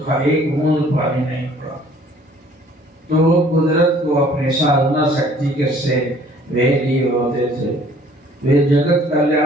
एक बूंद पानी नहीं पड़ा। तो वो कुदरत को अपनी साधना शक्ति के से वे लिए होते थे, वे जगत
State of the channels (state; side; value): normal; both; correlation 0.56